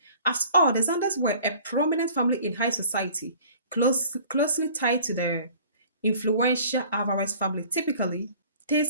After all, the Zanders were a prominent family in high society, closely tied to the influential Alvarez family. Typically,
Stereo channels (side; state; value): both; inverted; correlation -0.50